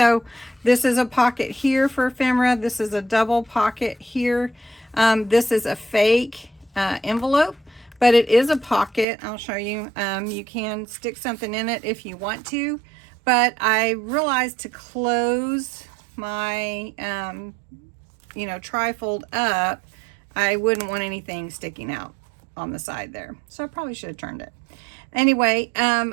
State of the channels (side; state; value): left; drops out; at 9.1 s